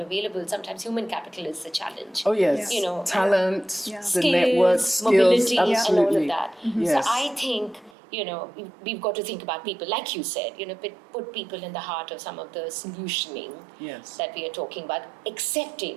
available, sometimes human capital is the challenge. Oh, yes. You know, talent, the skills, network, mobility, skills, and all of that. Yes. So I think, you know, we've got to think about people, like you said, you know, put people in the heart of some of the solutioning that we are talking about,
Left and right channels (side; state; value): left; drops out; at 7.9 s